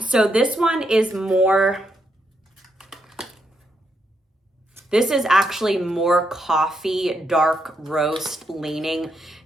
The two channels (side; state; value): both; normal; correlation 0.80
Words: so this one is more, this is actually more coffee, dark roast leaning